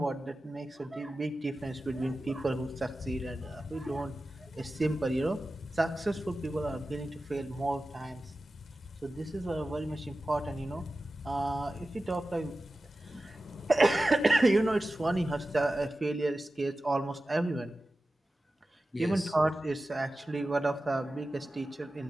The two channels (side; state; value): both; normal; correlation 0.94